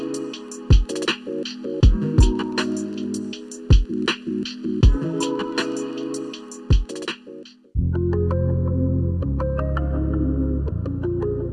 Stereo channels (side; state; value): both; identical; correlation 1.00